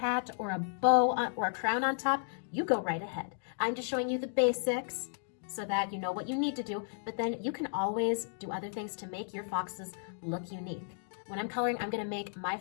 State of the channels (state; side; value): silent; right; digital silence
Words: or a bow or a crown on top, you go right ahead. I'm just showing you the basics so that you know what you need to do, but then you can always do other things to make your foxes look unique. When I'm coloring, I'm gonna make my